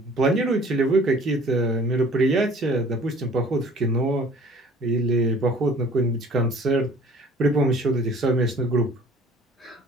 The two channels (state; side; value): normal; both; correlation 0.51